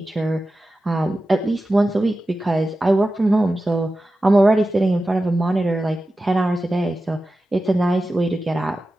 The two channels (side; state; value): both; normal; correlation 0.93